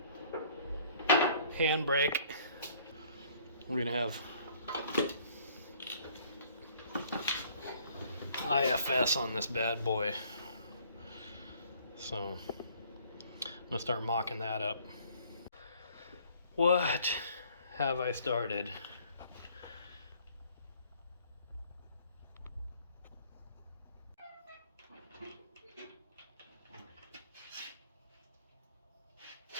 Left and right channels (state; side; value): inverted; both; correlation -0.58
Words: handbrake. We're gonna have IFS on this bad boy, so I'm gonna start mocking that up. What have I started?